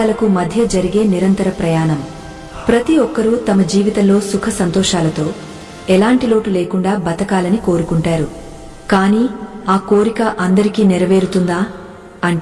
మధ్య జరిగే నిరంతర ప్రయాణం. ప్రతి ఒక్కరూ తమ జీవితంలో సుఖ సంతోషాలతో ఎలాంటి లోటు లేకుండా బతకాలని కోరుకుంటారు. కానీ ఆ కోరిక అందరికీ నెరవేరుతుందా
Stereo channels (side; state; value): both; identical; correlation 1.00